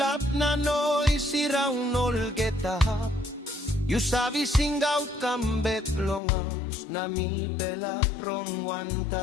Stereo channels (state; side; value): drops out; right; at 6.2 s